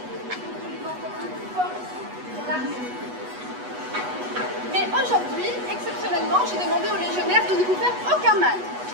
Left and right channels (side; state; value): left; late; 8.2 ms